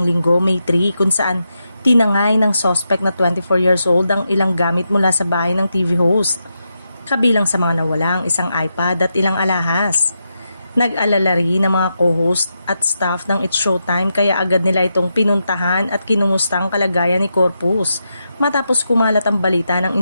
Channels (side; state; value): both; inverted; correlation -0.86